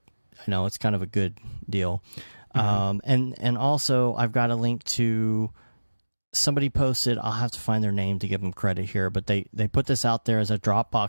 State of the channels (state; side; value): inverted; both; correlation -1.00